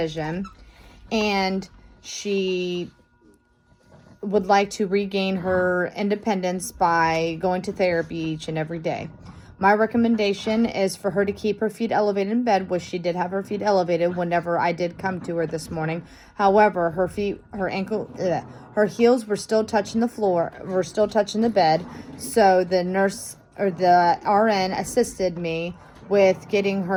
and she would like to regain her independence by going to therapy each and every day. My recommendation is for her to keep her feet elevated in bed, which she did have her feet elevated whenever I did come to her this morning. However, her heels were still touching the floor, were still touching the bed, so the nurse or the RN assisted me with getting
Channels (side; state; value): both; identical; correlation 1.00